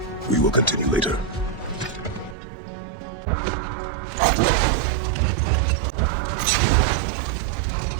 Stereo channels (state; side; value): drops out; left; at 2.4 s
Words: We will continue later.